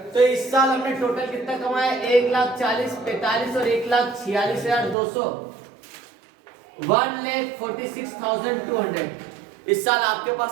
तो इस साल हमने टोटल कितना कमाया, 1,40,000, 45 और 1,46,200, 1,46,200। इस साल आपके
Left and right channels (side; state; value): left; drops out; at 5.0 s